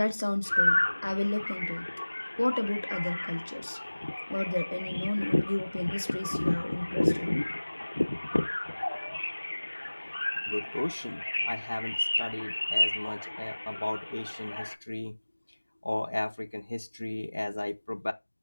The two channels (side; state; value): both; inverted; correlation -1.00